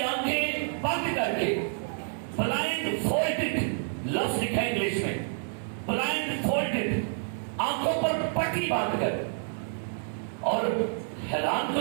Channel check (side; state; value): left; silent; digital silence